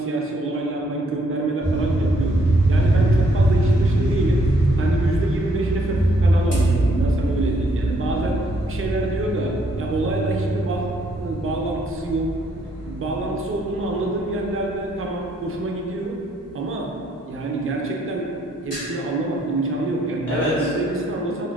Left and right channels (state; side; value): normal; both; correlation 0.69